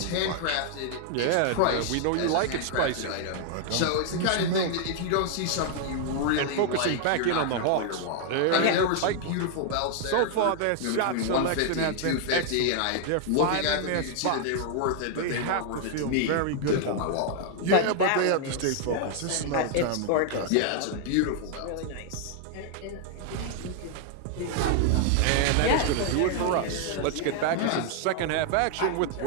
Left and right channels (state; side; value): different; both; correlation 0.00